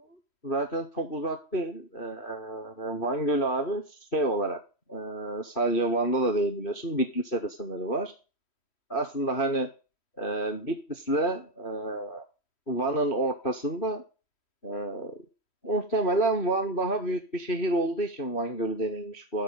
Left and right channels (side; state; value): right; late; 3.1 ms